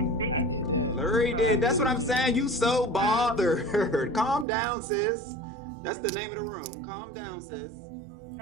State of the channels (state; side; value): drops out; left; at 4.5 s